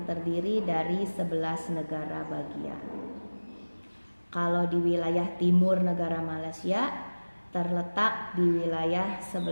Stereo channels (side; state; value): both; inverted; correlation -1.00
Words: terdiri dari 11 negara bagian. Kalau di wilayah timur negara Malaysia terletak di wilayah